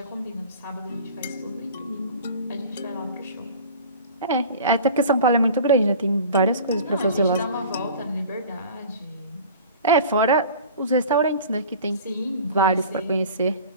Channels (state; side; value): inverted; both; correlation -0.41